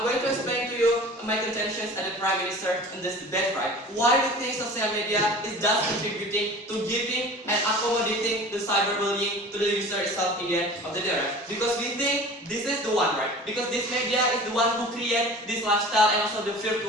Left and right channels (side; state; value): both; normal; correlation 0.41